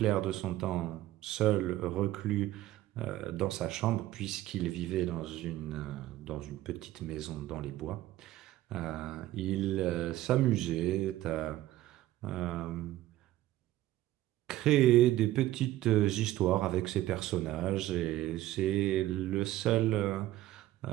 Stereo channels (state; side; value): quieter; left; 15.1 dB